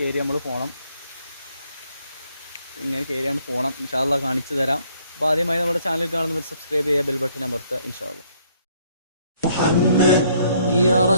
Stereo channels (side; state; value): both; inverted; correlation -0.65